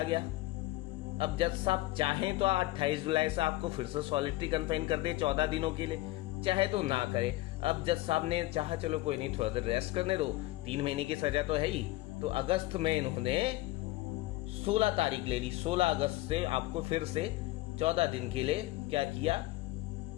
गया। अब जज साहब चाहें तो 28 जुलाई से आपको फिर से सॉलिटरी कन्फाइन कर दे 14 दिनों के लिए, चाहे तो ना करे। अब जज साहब ने चाहा चलो कोई नहीं, थोड़ा देर रेस्ट करने दो, 3 महीने की सजा तो है ही, तो अगस्त में इन्होंने 16 तारीख ले ली, 16 अगस्त से आपको फिर से 14 दिन के लिए क्या किया,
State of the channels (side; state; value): right; quieter; 18.5 dB